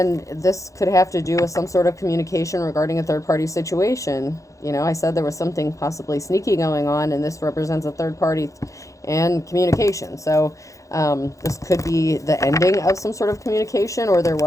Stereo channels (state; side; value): late; right; 0.15 ms